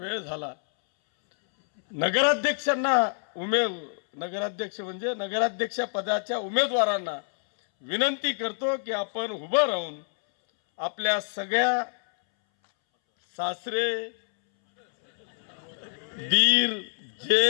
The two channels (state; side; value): silent; right; 60 dB below the other